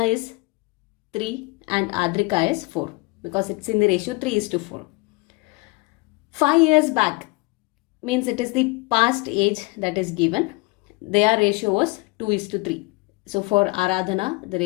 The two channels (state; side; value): quieter; right; 25.8 dB